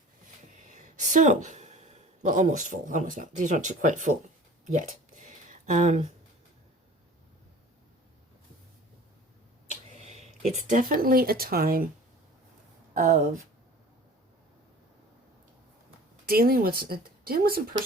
So, well, almost full. Almost not. These aren't quite full yet. It's definitely a time of dealing with some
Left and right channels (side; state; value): both; normal; correlation 0.44